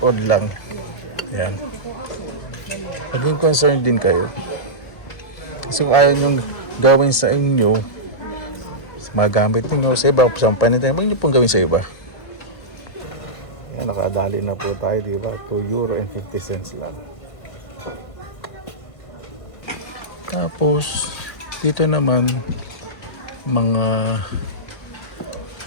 odd lang. Yan. Maging concerned din kayo. Kasi kung ayaw nyo gawin sa inyo, magamit nyo sa iba, sa panitay, huwag nyo pong gawin sa iba. Yan, nakadali na po tayo, diba? €2.50 lang. Tapos, dito naman, mga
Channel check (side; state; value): right; late; 1.4 ms